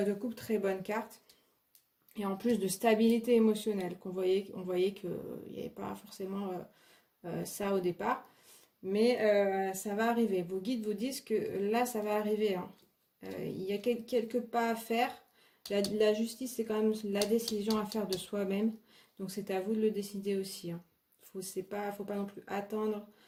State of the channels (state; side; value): identical; both; correlation 1.00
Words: de coupe, très bonne carte. Et en plus de stabilité émotionnelle, on voyait qu'il n'y avait pas forcément ça au départ. Mais ça va arriver. Vos guides vous disent que là, ça va arriver, hein. Il y a quelques pas à faire. La justice, c'est quand même la décision à faire de soi-même. Donc, c'est à vous de le décider aussi, hein. Faut pas non plus attendre